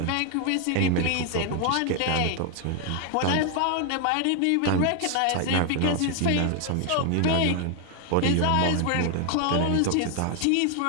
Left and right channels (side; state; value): both; different; correlation 0.01